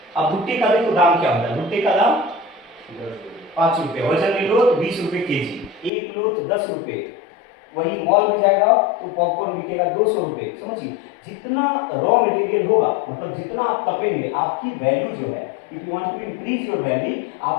अब भुट्टे का देखो दाम क्या होता है। भुट्टे का दाम 5 रुपए, वजन में लो तो 20 रुपए केजी, एक लो तो 10 रुपए। वही मॉल में जाएगा तो पॉपकॉर्न बिकेगा 200 रुपए। समझिए, जितना रॉ मटेरियल होगा, मतलब जितना आप तपेंगे, आपकी वैल्यू जो है, if you want to increase your value,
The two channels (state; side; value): drops out; right; at 5.9 s